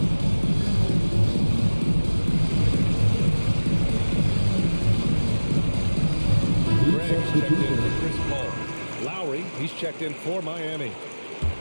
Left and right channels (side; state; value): both; inverted; correlation -1.00